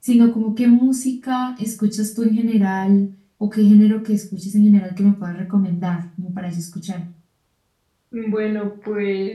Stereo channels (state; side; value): identical; both; correlation 1.00